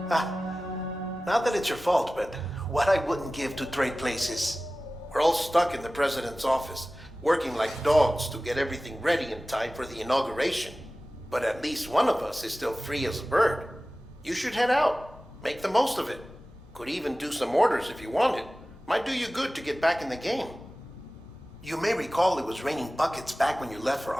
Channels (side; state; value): both; normal; correlation 0.96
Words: Not that it's your fault, but what I wouldn't give to trade places. We're all stuck in the president's office, working like dogs to get everything ready in time for the inauguration. But at least one of us is still free as a bird. You should head out. Make the most of it. Could even do some orders if you wanted. Might do you good to get back in the game. You may recall it was raining buckets back when you left for